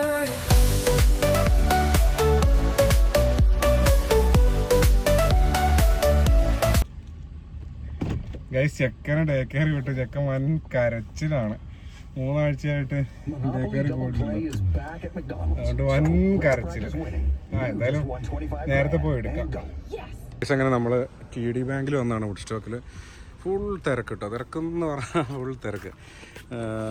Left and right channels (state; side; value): identical; both; correlation 1.00